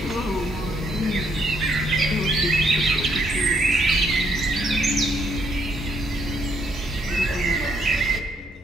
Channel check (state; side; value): normal; both; correlation 0.71